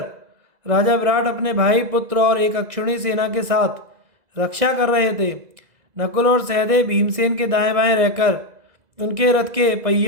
राजा विराट अपने भाई, पुत्र और एक अक्षुणी सेना के साथ रक्षा कर रहे थे। नकुल और सहदेव भीमसेन के दाएं बाएं रहकर उनके रथ के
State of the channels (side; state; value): left; late; 2.0 ms